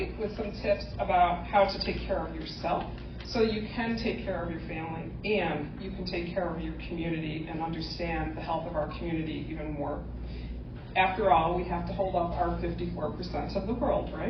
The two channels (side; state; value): both; identical; correlation 1.00